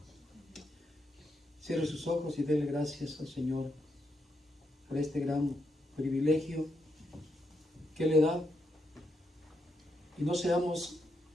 Cierre sus ojos y déle gracias al Señor por este gran privilegio que le da. Y no seamos,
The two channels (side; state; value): both; normal; correlation 0.81